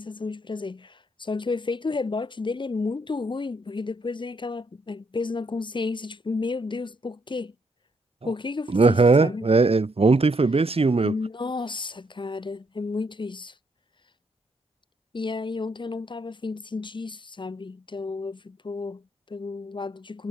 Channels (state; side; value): normal; both; correlation 0.73